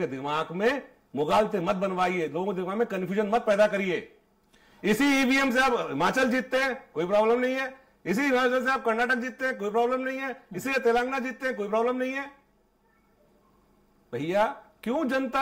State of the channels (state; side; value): identical; both; correlation 1.00